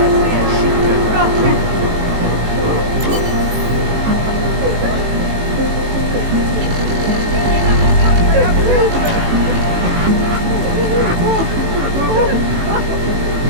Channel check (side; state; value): left; late; 18 ms